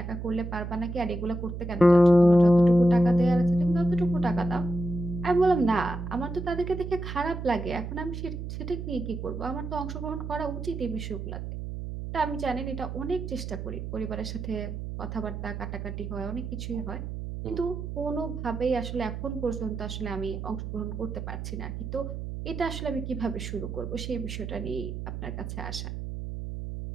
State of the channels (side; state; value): right; noise; hum, 6 dB below the sound